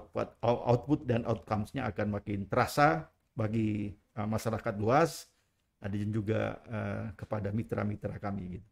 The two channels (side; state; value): both; identical; correlation 1.00